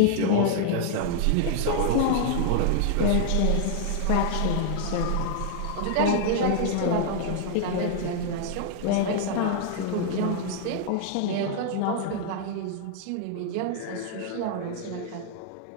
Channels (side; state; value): both; different; correlation 0.00